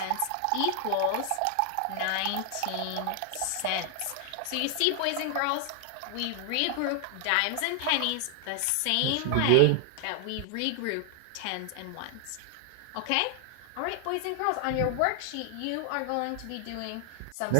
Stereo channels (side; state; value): both; different; correlation 0.00